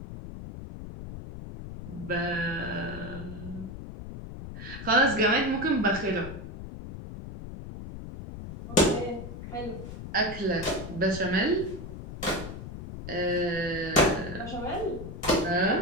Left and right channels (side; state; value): left; noise; rumble, 10 dB below the sound